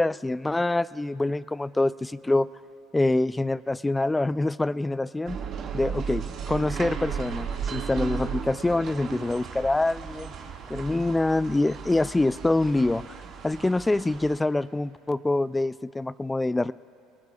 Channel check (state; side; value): normal; both; correlation 0.96